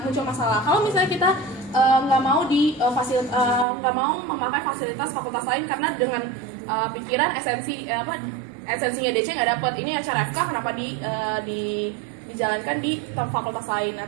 muncul masalah. Kalau misalnya kita nggak mau memakai fasilitas fakultas lain karena dengan pikiran esensinya DC nggak dapat, ini acara FK kenapa dijalankan di fakultas lain. Nah,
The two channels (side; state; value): left; drops out; at 3.7 s